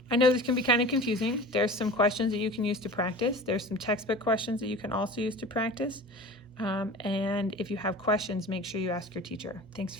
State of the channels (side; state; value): both; normal; correlation 0.38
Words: I know this can be kind of confusing. There's some questions that you can use to practice. There's some textbook questions that you can also use to practice. And if you have questions, make sure you ask your teacher. Thanks